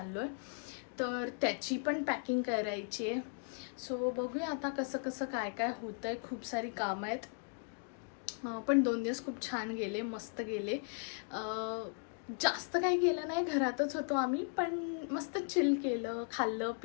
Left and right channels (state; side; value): silent; right; 53 dB below the other